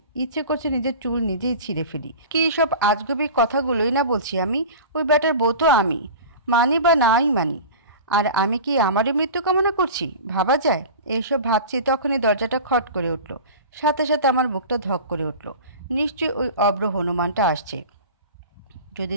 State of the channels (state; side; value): inverted; both; correlation -0.35